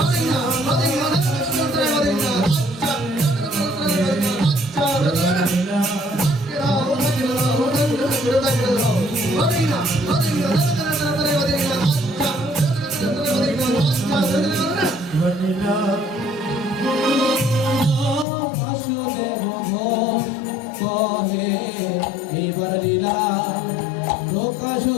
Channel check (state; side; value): drops out; right; at 18.2 s